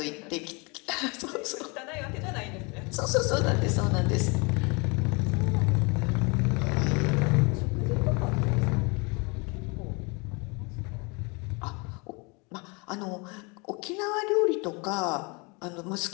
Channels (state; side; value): quieter; right; 29.7 dB